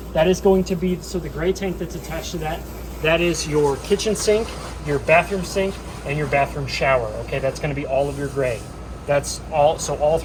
That is going to be, so the gray tank that's attached to that, that is your kitchen sink, your bathroom sink, and your bathroom shower. Okay, that's going to be all of your gray. That's all. So all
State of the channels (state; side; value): identical; both; correlation 1.00